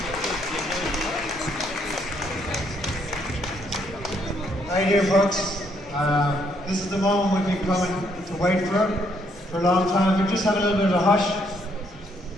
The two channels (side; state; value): both; normal; correlation 0.71